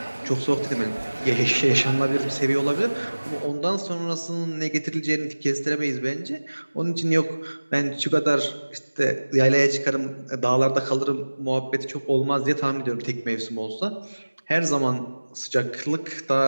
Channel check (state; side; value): inverted; both; correlation -1.00